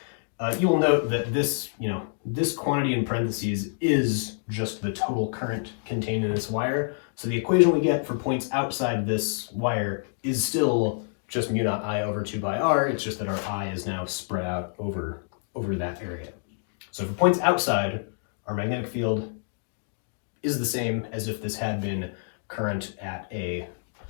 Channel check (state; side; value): silent; right; digital silence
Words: You will note that this quantity in parentheses is just the total current contained in this wire. So the equation we get for points outside this wire is still just mu naught I over 2 pi r. It's just that our I is now spread out over that area. So for points outside, our magnetic field is the same as if this had been current at a